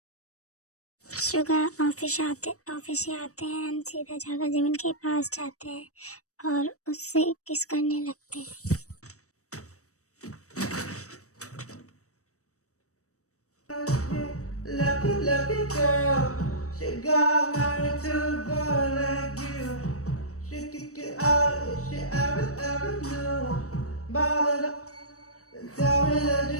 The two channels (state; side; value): late; right; 0.65 ms